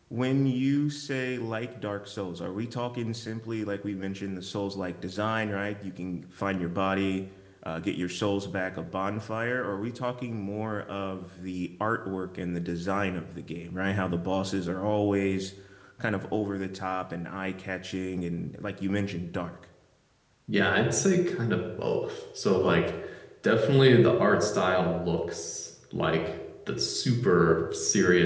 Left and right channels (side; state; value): both; identical; correlation 1.00